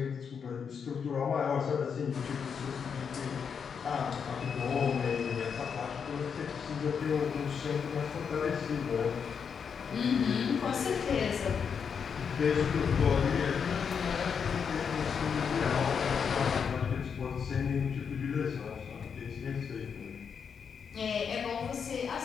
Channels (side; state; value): right; quieter; 6.6 dB